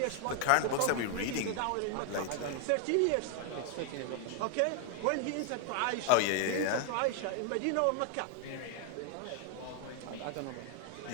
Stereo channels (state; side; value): different; both; correlation 0.01